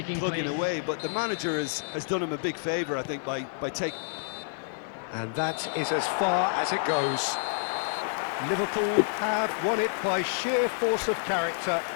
plugging away, but the manager has done him a big favour, I think, by taking... And that is as far as it goes. Liverpool have won it by sheer force of character.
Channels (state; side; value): silent; right; digital silence